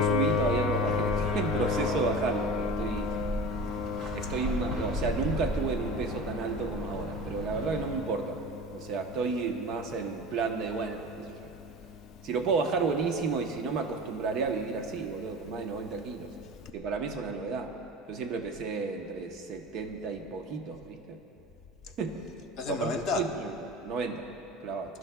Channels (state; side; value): normal; both; correlation 0.34